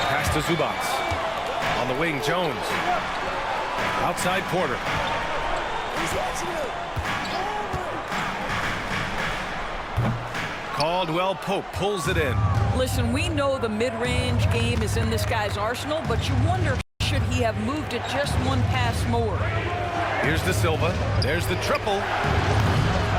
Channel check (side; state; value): both; identical; correlation 1.00